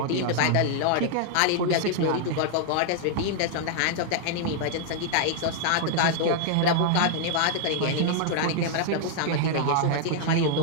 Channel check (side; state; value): both; different; correlation -0.01